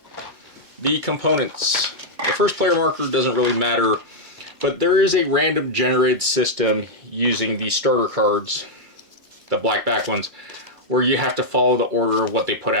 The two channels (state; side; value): late; left; 2.2 ms